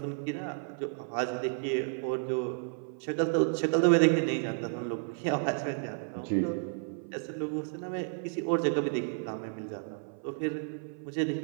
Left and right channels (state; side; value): silent; left; 57 dB below the other